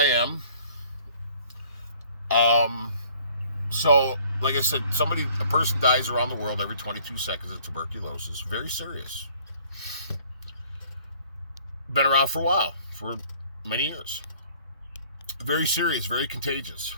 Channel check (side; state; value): both; inverted; correlation -0.56